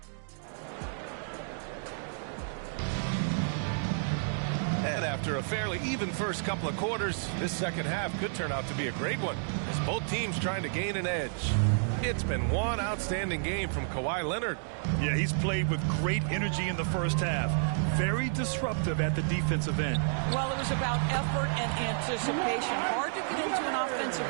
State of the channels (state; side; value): silent; left; digital silence